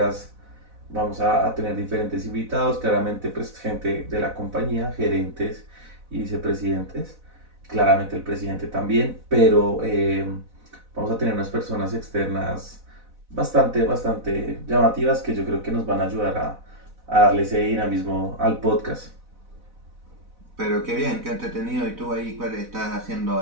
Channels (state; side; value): late; left; 4.0 ms